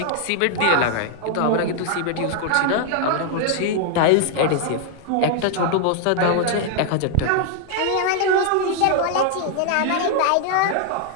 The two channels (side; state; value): both; different; correlation 0.00